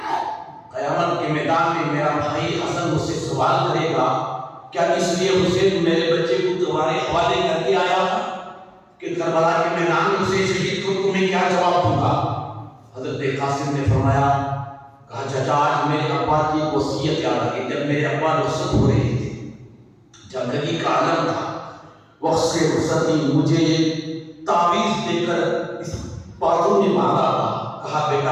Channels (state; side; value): identical; both; correlation 1.00